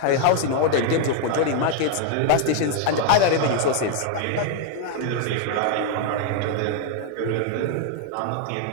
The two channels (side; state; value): both; different; correlation 0.00